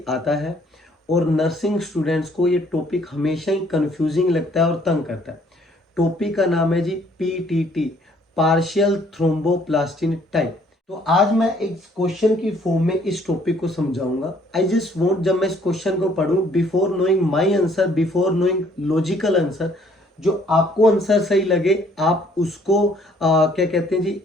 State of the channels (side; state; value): both; normal; correlation 0.62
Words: आता है और नर्सिंग स्टूडेंट्स को ये टॉपिक हमेशा ही कंफ्यूजिंग लगता है और तंग करता है। टॉपिक का नाम है जी पीटीटी, पार्शियल थ्रोम्बोप्लास्टिन टाइप। तो आज मैं एक क्वेश्चन की फॉर्म में इस टॉपिक को समझाऊंगा। आई जस्ट वॉन्ट, जब मैं इस क्वेश्चन को पढ़ूं, before knowing my answer, before knowing logical answer, जो आपको आंसर सही लगे आप उसको क्या कहते हैं जी,